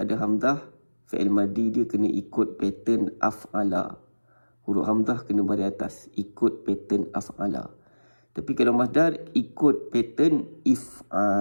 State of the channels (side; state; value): both; inverted; correlation -1.00